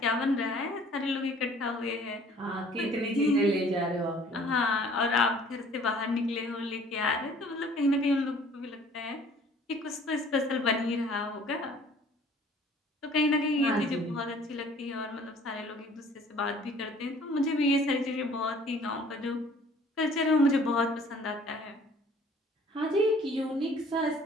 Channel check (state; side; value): normal; both; correlation 0.54